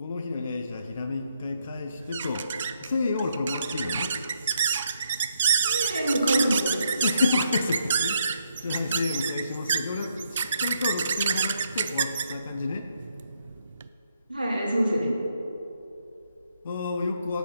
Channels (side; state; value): both; inverted; correlation -0.76